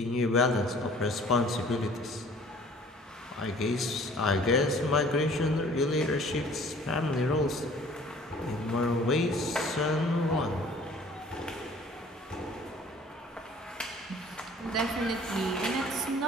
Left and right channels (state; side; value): normal; both; correlation 0.52